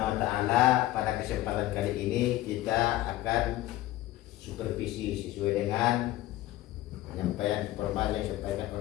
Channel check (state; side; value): quieter; right; 15.6 dB